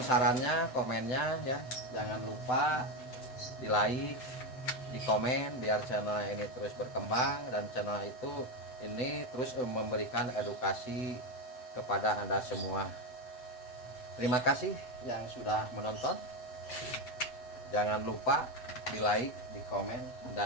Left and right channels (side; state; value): right; late; 7.9 ms